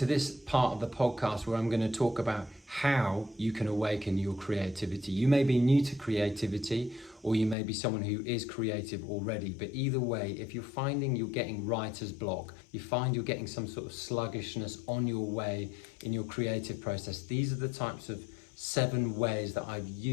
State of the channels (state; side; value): drops out; right; at 7.6 s